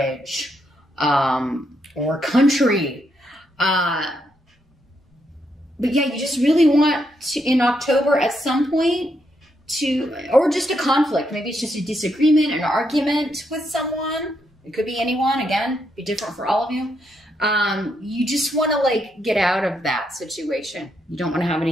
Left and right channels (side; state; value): both; normal; correlation 0.79